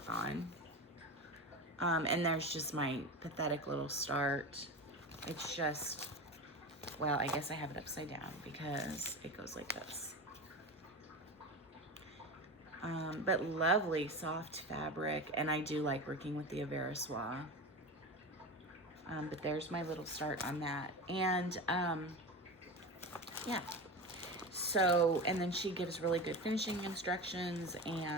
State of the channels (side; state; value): both; normal; correlation 0.26